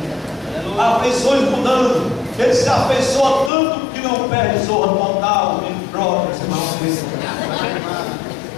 Afeições mudando. Ele se afeiçoa tanto que não perde zorra total,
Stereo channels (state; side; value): drops out; right; at 3.5 s